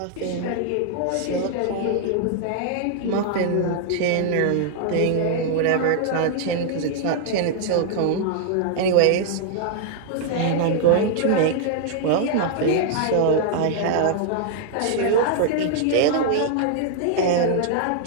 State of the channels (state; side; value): different; both; correlation -0.01